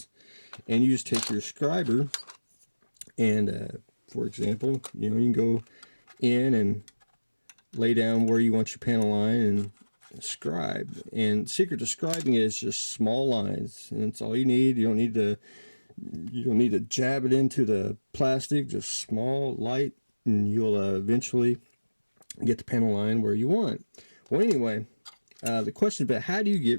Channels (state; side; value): inverted; both; correlation -1.00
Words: and you just take your scriber, and for example, you can go in and lay down where you want your panel line and scribe. And secret to scribing is just small lines, and that's all you need. You don't need to jab it into the plastic, just small, light, and you'll eventually get the panel line where you want. Well, anyway, the question about how do you